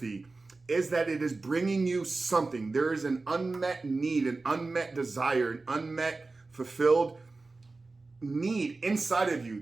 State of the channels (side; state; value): left; quieter; 3.6 dB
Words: is that it is bringing you something. There is an unmet need, an unmet desire, an unmet fulfilled need inside of you